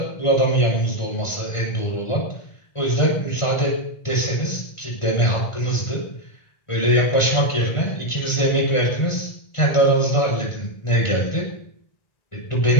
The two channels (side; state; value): right; late; 1.5 ms